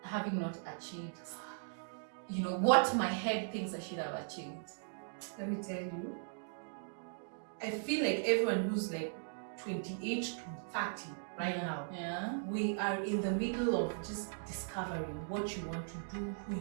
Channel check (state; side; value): silent; left; digital silence